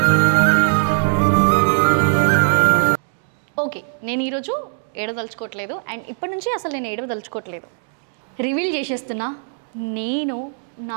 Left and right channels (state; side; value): silent; left; digital silence